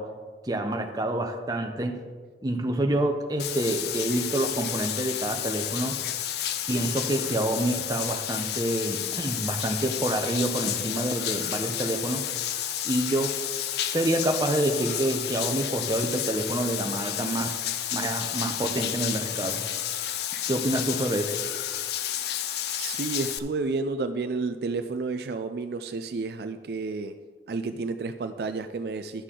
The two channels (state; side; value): normal; both; correlation 0.47